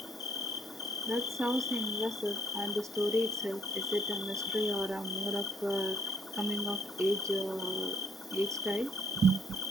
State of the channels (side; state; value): both; normal; correlation 0.63